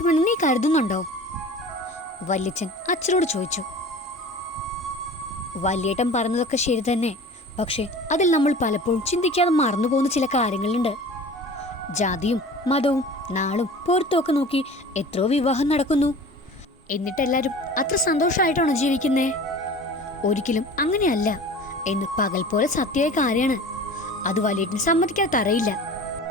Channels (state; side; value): normal; both; correlation 0.40